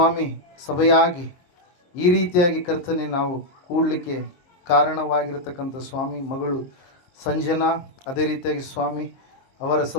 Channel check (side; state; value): right; late; 23 ms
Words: ಸಭೆಯಾಗಿ ಈ ರೀತಿಯಾಗಿ ಕರ್ತನೆ ನಾವು ಕೂಡಲಿಕ್ಕೆ ಕಾರಣವಾಗಿರತಕ್ಕಂಥ ಸ್ವಾಮಿ ಮಗಳು ಸಂಜನಾ, ಅದೇ ರೀತಿಯಾಗಿ ಸ್ವಾಮಿ ಅವರ